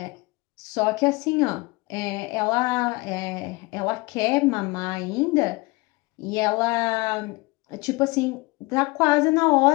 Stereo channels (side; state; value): right; quieter; 24.1 dB